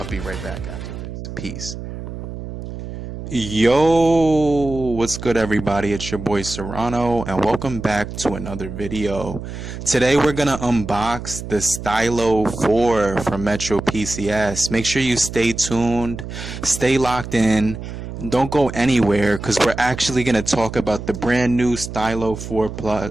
be right back after this. Peace. Yo, what's good everybody? It's your boy Serrano and welcome back to another video. Today we're gonna unbox the Stylo 4 from Metro PCS. Make sure you stay tuned, stay locked in, don't go anywhere because we're actually gonna talk about the brand new Stylo 4 Plus,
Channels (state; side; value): noise; right; hum, 9 dB below the sound